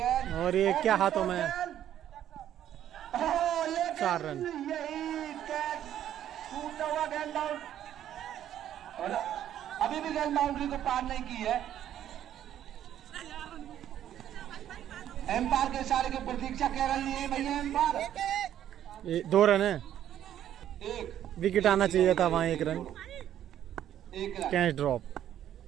और ये क्या हाथों में? 4 रन। यही कैच टूटा हुआ गेंद आउट, और अभी भी गेंद बाउंड्री को पार नहीं की है। एम्पायर के इशारे की प्रतीक्षा कर रही है भैया एम्पायर। 2 रन है, एक विकेट आना चाहिए था वहाँ। 1 run, 1 run. Catch drop.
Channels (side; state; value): left; quieter; 11.1 dB